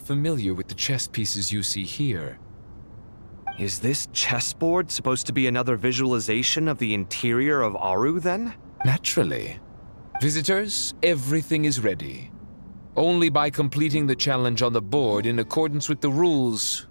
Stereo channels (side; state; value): both; inverted; correlation -1.00